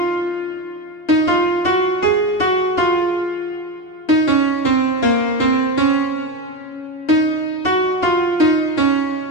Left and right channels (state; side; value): late; right; 2.9 ms